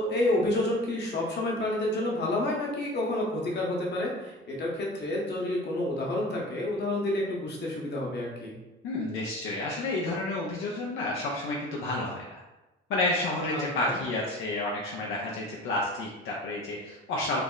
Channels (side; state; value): both; normal; correlation 0.38